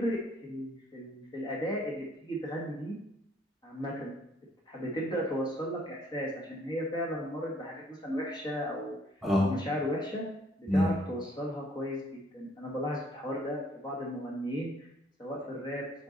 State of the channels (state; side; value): normal; both; correlation 0.63